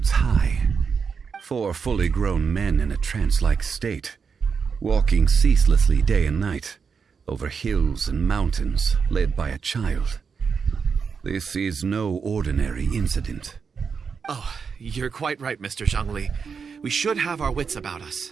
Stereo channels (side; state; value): left; quieter; 5.9 dB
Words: high. 4 fully grown men in a trance-like state, walking ceaselessly day and night, over hills and mountains, led by a child. This is no ordinary incident. Oh, you're quite right, Mr. Zhongli. We should have our wits about us.